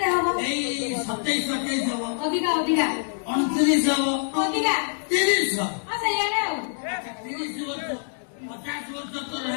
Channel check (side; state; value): right; silent; digital silence